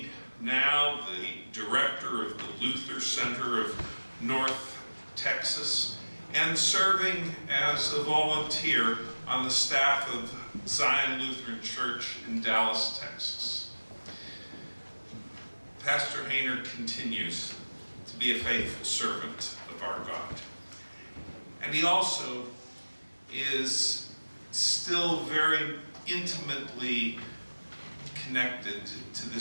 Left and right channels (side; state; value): both; inverted; correlation -1.00